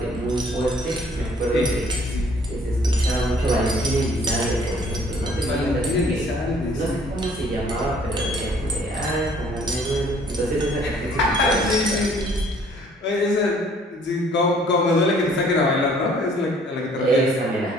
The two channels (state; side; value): normal; both; correlation 0.58